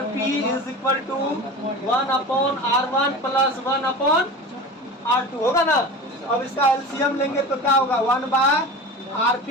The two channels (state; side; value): normal; both; correlation 0.32